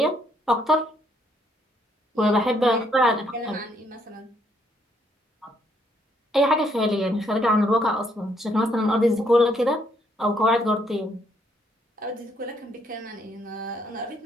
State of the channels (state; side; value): normal; both; correlation 0.70